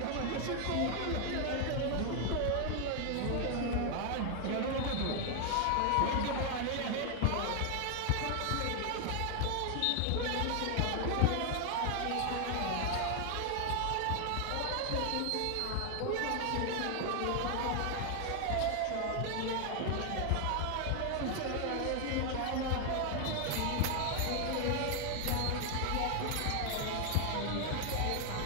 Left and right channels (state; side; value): different; both; correlation 0.00